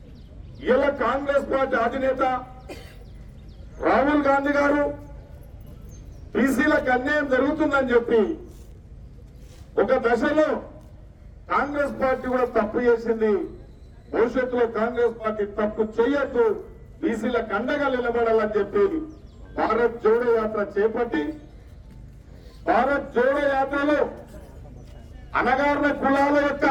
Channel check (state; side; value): identical; both; correlation 1.00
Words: ఇలా కాంగ్రెస్ పార్టీ అధినేత రాహుల్ గాంధీ గారు బీసీలకు అన్యాయం జరుగుతుందని చెప్పి ఒక దశలో కాంగ్రెస్ పార్టీ కూడా తప్పు చేసింది. భవిష్యత్తులో కాంగ్రెస్ పార్టీ తప్పు చేయొద్దు, బీసీలకు అండగా నిలబడాలని చెప్పి భారత్ జోడో యాత్ర చేపట్టి భారత్ జోడో యాత్రలో అణగారిన కులాల యొక్క